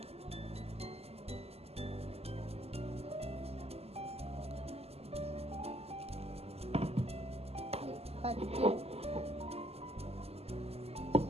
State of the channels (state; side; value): late; left; 0.29 ms